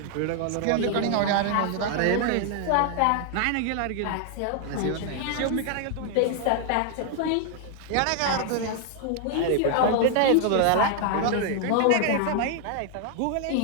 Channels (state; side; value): different; both; correlation 0.00